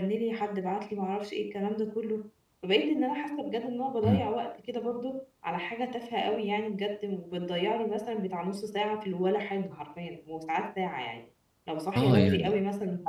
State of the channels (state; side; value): identical; both; correlation 1.00